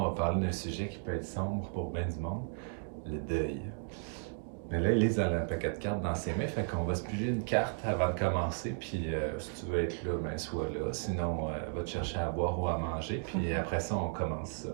va parler d'un sujet qui peut être sombre pour bien du monde, le deuil. Mais là, Élise, elle a un paquet de cartes dans ses mains, fait qu'on va se piger une carte avant de commencer. Puis si tu veux être là, ben sois là. Sinon, va te chercher à boire ou à manger. Puis après ça, on commence ça.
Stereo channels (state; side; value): silent; left; 55 dB below the other